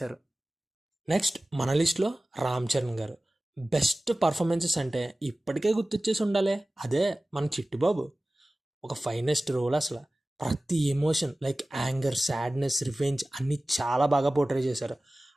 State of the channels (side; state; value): both; normal; correlation 0.97